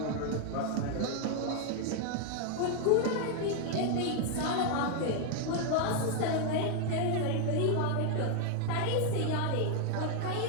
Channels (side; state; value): both; different; correlation 0.00